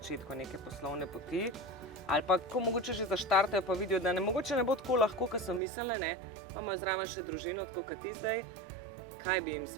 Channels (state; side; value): drops out; left; at 5.6 s